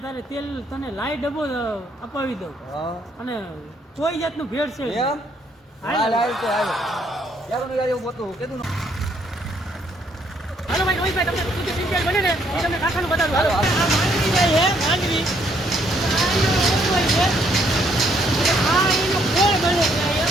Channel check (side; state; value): both; normal; correlation 0.69